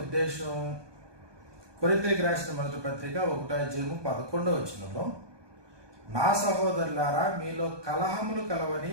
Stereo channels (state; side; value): late; left; 1.2 ms